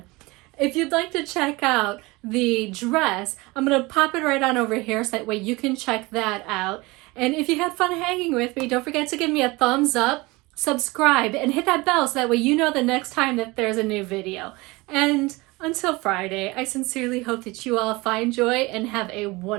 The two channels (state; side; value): quieter; left; 23.1 dB